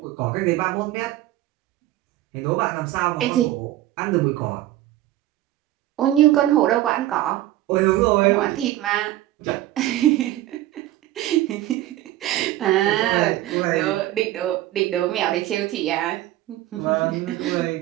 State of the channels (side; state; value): left; quieter; 14.8 dB